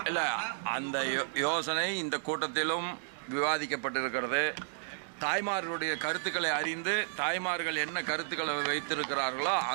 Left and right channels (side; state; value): left; silent; digital silence